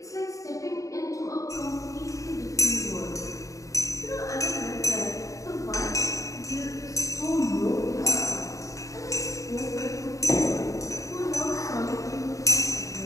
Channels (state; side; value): late; right; 0.16 ms